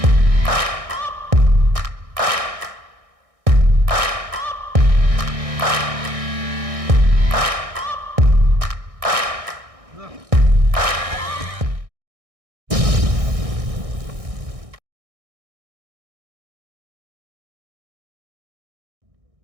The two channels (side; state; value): left; late; 1.6 ms